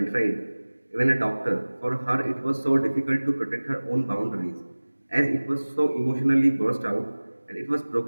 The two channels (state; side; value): inverted; both; correlation -1.00